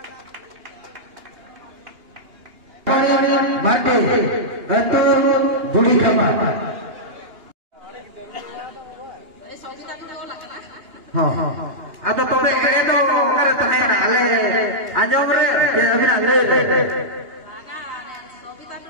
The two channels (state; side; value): late; left; 2.9 ms